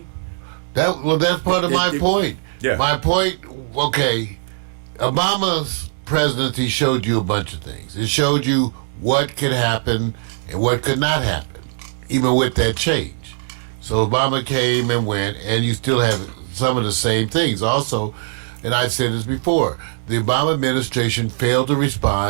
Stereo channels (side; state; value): left; silent; digital silence